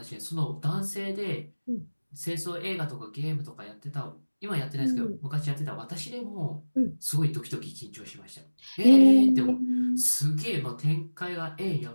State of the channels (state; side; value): inverted; both; correlation -1.00